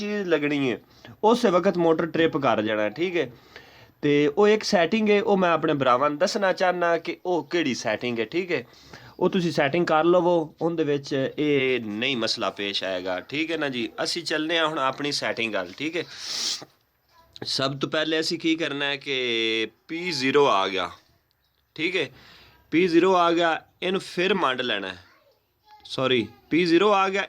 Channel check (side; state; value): both; identical; correlation 1.00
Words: लगनी है उस वक्त मोटर ट्रिप कर जाना है ठीक है। तो वो एक सैटिंग है वो मैं अपने भरावां नूं दसना चाहना कि वो किहड़ी सैटिंग है ठीक है। ਉਹ ਤੁਸੀਂ ਸੈਟਿੰਗ ਕਰ ਲਵੋ ਉਹਦੇ ਵਿੱਚ ਇਹ ਨਹੀਂ ਮਸਲਾ ਪੇਸ਼ ਆਏਗਾ ਠੀਕ ਹੈ ਨਾ ਜੀ। ਅਸੀਂ ਚੱਲਨੇ ਆ ਹੁਣ ਆਪਣੀ ਸੈਟਿੰਗ ਗੱਲ ਠੀਕ ਹੈ। ਸਭ ਤੋਂ ਪਹਿਲੇ ਅਸੀਂ ਕੀ ਕਰਨਾ ਹੈ ਕਿ P0 ਆ ਗਿਆ ਠੀਕ ਹੈ। P0 ਆ ਗਿਆ ਇਹਨੂੰ ਫਿਰ ਮੰਡ ਲੈਣਾ ਹੈ ਸੌਰੀ P0 ਆ ਗਿਆ